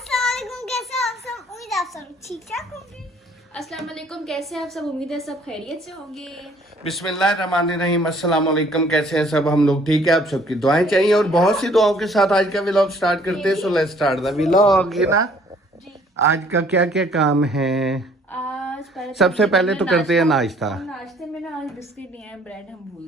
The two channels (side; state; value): both; normal; correlation 0.59